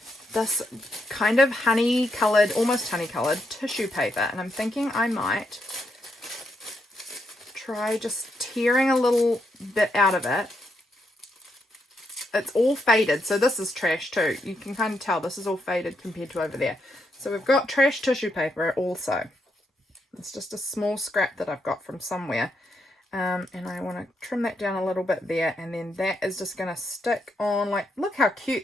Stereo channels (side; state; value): both; normal; correlation 0.80